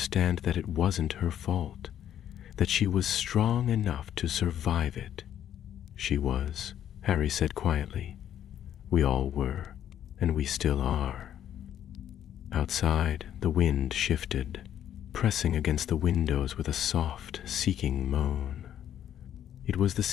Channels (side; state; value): right; quieter; 10.4 dB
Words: that it wasn't her fault, that she was strong enough to survive it. She was, Harry said quietly. We all were, and we still are. Outside, the wind shifted, pressing against the windows with a soft, seeking moan. It was the